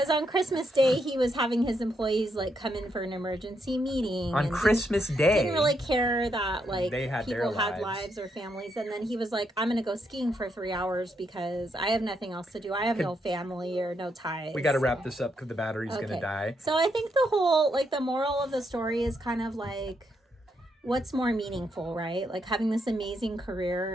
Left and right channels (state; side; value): normal; both; correlation 0.79